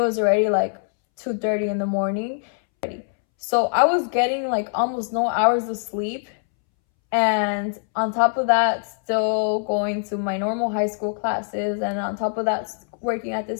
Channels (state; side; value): silent; right; 64 dB below the other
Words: already like 2:30 in the morning. So I was getting like almost no hours of sleep. And on top of that, still going to my normal high school classes. And on top of that, working at